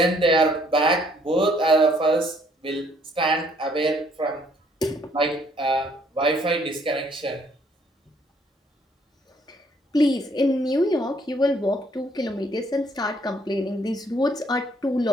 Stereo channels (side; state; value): both; normal; correlation 0.65